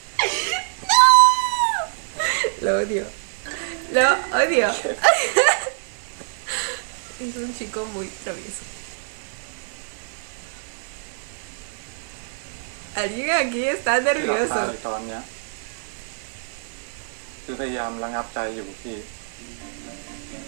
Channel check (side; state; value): left; silent; 62 dB below the other